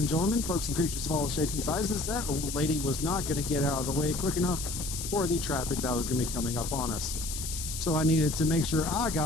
gentlemen, folks and creatures of all shapes and sizes. That old lady was not going to get out of the way quick enough for the traffic that was going to be coming up on us. So I needed to make sure I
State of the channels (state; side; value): noise; left; hiss, 6 dB below the sound